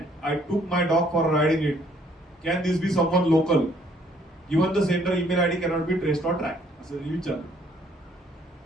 I took my dog for riding it. Can this be someone local? Even the sender email ID cannot be traced or track असं विचारलं.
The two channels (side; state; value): both; normal; correlation 0.64